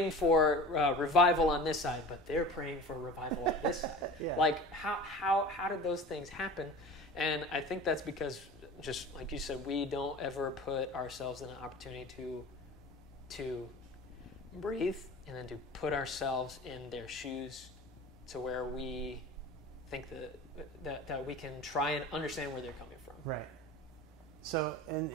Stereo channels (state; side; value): normal; both; correlation 0.37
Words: for revival on this side, but they're praying for revival on this side. Yeah. How did those things happen? And I think that's because, just like you said, we don't ever put ourselves in an opportunity to breathe and then to put ourselves in their shoes to where we think that we can try and understand where they're coming from. Right. So,